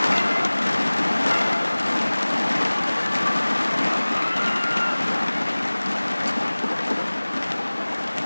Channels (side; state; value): both; inverted; correlation -1.00